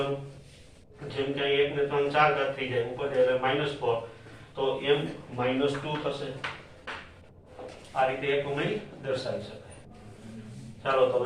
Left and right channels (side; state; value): both; identical; correlation 1.00